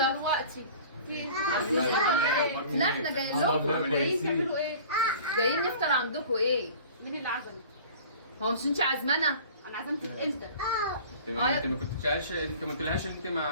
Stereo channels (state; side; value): inverted; both; correlation -0.44